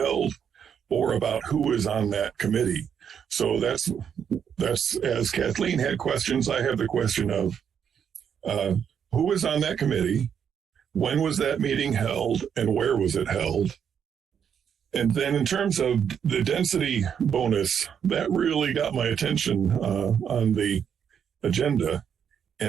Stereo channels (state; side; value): quieter; left; 7.9 dB